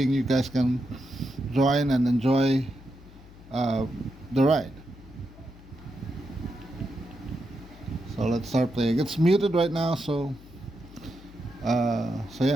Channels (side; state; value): left; noise; hum, 20 dB below the sound